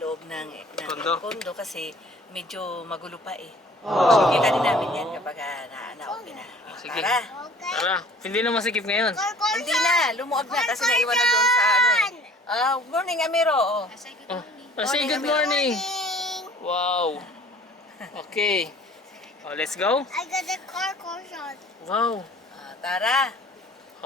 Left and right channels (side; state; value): both; normal; correlation 0.51